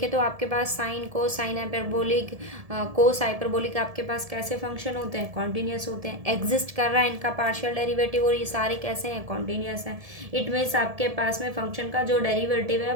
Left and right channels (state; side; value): late; left; 1.7 ms